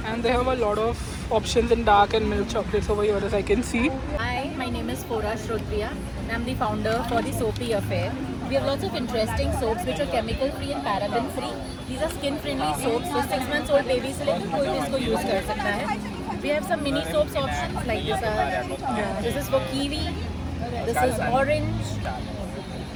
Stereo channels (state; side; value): identical; both; correlation 1.00